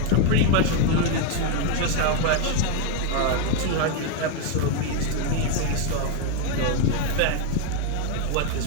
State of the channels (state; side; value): different; both; correlation 0.01